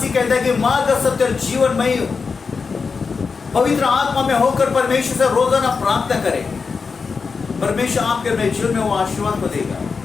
कहता है कि मार्ग, सत्य और जीवन मैं ही हूं। पवित्र आत्मा में होकर परमेश्वर से रोजाना प्रार्थना करें। परमेश्वर आपके मेरे जीवन में वो आशीर्वाद को देगा।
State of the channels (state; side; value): quieter; right; 5.0 dB